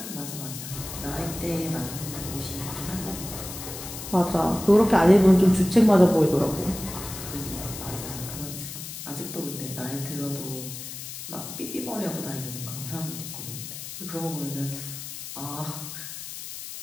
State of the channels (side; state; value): left; noise; hiss, 9 dB below the sound